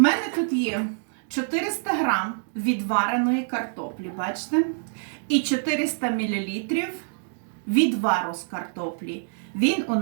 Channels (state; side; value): silent; left; digital silence